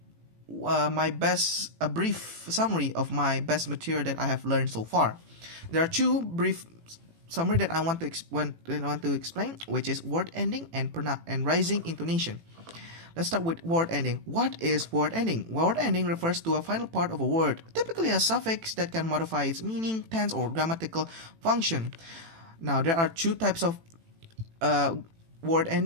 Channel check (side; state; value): left; late; 18 ms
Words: a brief summary of my best material that I have learned so far. There are two brief summary that I want to explain, which is word ending and rising intonation. Let's start with word ending. What is word ending? Word ending refers to a final part of a word, typically a suffix that can modify its meaning, tense, or grammatical function. Now, there are two types of word